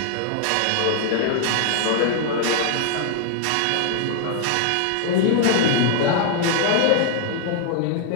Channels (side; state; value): both; different; correlation 0.00